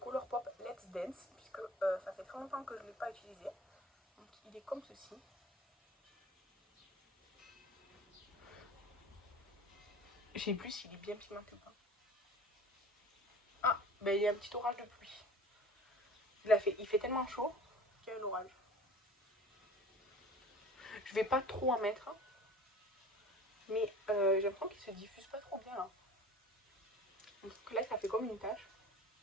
Let's Dance, puisque ça fait très longtemps que je ne l'ai pas utilisé. Donc, il est comme ceci. Je sais plus s'il est bien pigmenté ou pas. Ah, ben il y a un petit orage de pluie. Il fait tellement chaud qu'il y a un orage. Je vais pas trop en mettre, mais j'ai l'impression qu'il se diffuse pas trop bien là. Donc là, ça fait comme une tache.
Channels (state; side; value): normal; both; correlation 0.42